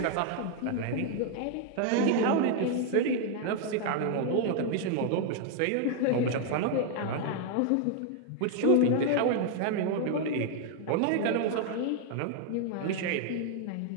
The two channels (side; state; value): both; different; correlation 0.00